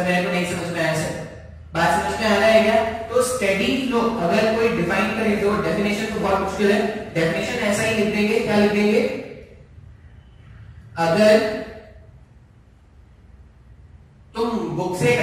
मेरे को नहीं समझ में आया सर, बात समझ में आ रहा है क्या? तो स्टेडी फ्लो अगर कोई डिफाइन करे, तो डेफिनेशन तो बहुत मुश्किल है, डेफिनेशन ऐसा ही लिख देंगे, क्या लिख देंगे, अगर तुम बुक से एक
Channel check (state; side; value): identical; both; correlation 1.00